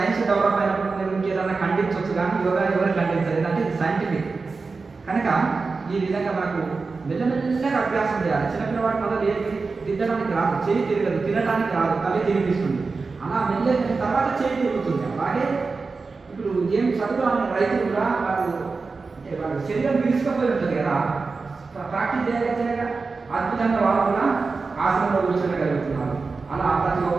డెవలప్ అయినప్పుడు మీరు ఇంకేదన్నా ఖండించవచ్చు, కానీ యోగా ఎవరు ఖండించలేదు అంటే ఇది సైంటిఫిక్. కనుక ఈ విధంగా మనకు మెల్లమెల్లగా అభ్యాసం చేయాలి. చిన్నపిల్లవాడు మళ్ళీ దిద్దడానికి రాదు, చేయి తిరగదు, తినడానికి రాదు, తల్లి తిరిగిస్తుంది. అలా మెల్లగా తర్వాత చేయి తిరుగుతుంది. అలాగే ఇప్పుడు ఏం చదువు అనే రైతులు కూడా వాళ్ళ శరీరం విరుచుకపోయి ఉంటుంది కదా, ప్రాక్టీస్ చేయగా అద్భుతంగా వాళ్ళు కూడా ఆసనంలో కూర్చోగలుగుతున్నారు. అలా ప్రతి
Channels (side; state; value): left; quieter; 4.3 dB